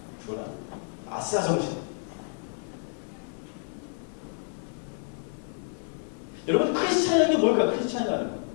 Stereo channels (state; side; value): silent; right; 58 dB below the other